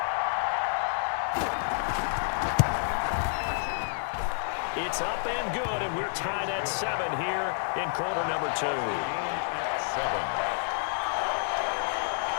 It's up and good, and we're tied at 7 here in quarter number 2. Game at 7.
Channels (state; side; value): silent; right; 58 dB below the other